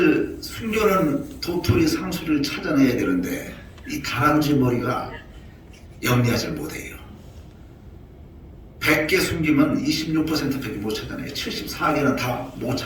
숨겨놓은 도토리, 상수리를 찾아내야 되는데 이 다람쥐 머리가 영리하지 못해요. 100개 숨기면 26%밖에 못 찾아내요. 74개는 다 못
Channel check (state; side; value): identical; both; correlation 1.00